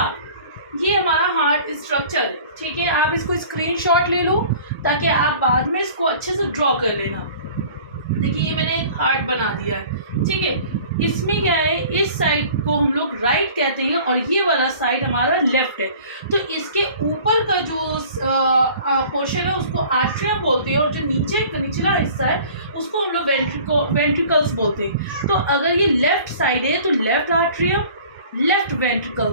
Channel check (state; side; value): inverted; both; correlation -0.47